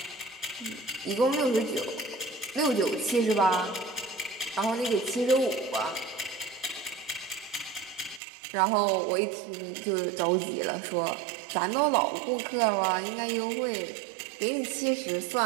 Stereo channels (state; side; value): drops out; left; at 8.2 s